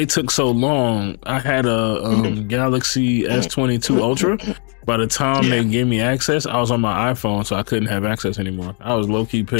took so long. I had a Galaxy S22 Ultra, by the time they gave me access, I was on my iPhone, so I couldn't have access anymore. I was low key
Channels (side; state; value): right; quieter; 39.7 dB